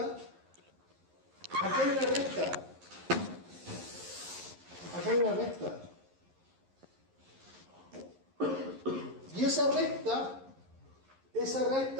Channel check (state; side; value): late; left; 11 ms